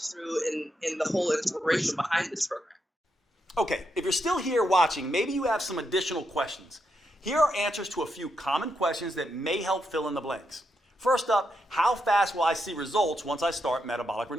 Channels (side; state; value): both; normal; correlation 0.82